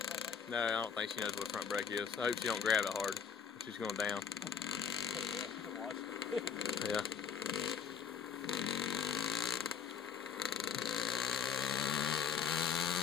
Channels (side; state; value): right; quieter; 6.9 dB